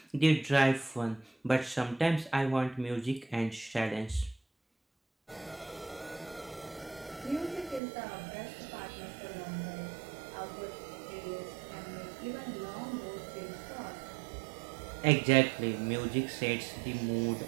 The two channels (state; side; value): drops out; left; at 7.8 s